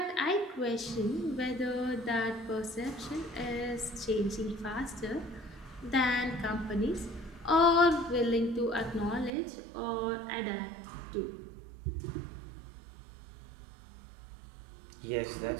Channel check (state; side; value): drops out; left; at 9.3 s